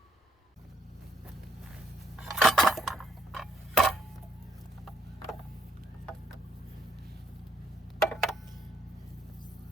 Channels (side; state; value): both; normal; correlation 0.72